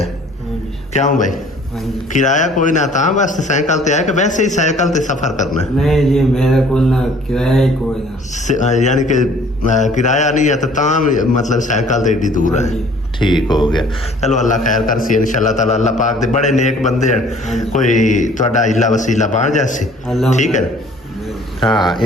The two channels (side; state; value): both; normal; correlation 0.54